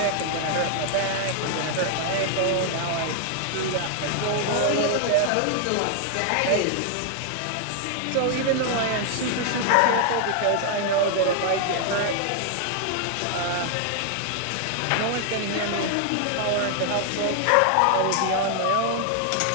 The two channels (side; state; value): both; different; correlation 0.00